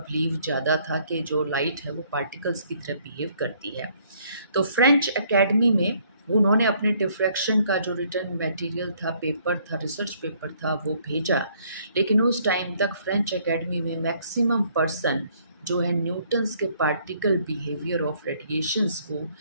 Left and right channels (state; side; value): inverted; both; correlation -0.64